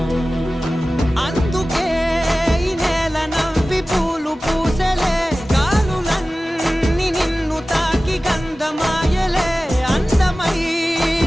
అందుకే ఈ నేల నవ్వి పూలు పూసెలే, గాలులన్నీ నిన్ను తాకి గంధమాయలే,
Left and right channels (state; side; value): normal; both; correlation 0.96